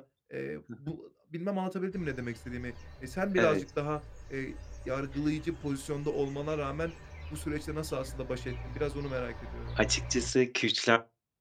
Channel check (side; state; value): both; identical; correlation 1.00